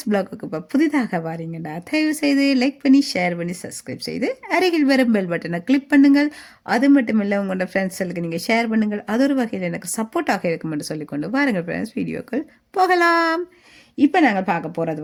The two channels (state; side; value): identical; both; correlation 1.00